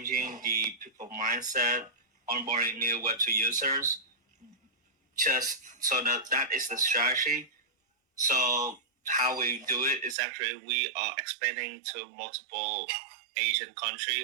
the people mindset, onboarding new Web2 users. Just so that is the strategy. So how we do it is actually we are expanding to multiple Asian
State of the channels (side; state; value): left; drops out; at 10.2 s